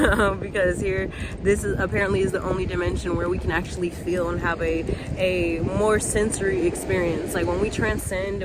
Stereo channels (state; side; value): identical; both; correlation 1.00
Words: because this is apparently the only dimension where we can actually feel and have a more sensory experience. Like when we transcend